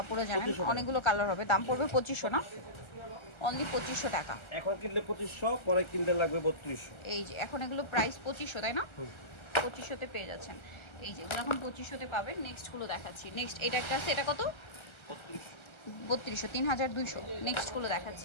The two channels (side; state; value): right; late; 1.3 ms